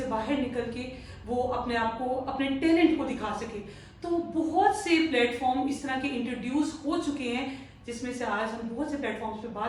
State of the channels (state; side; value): identical; both; correlation 1.00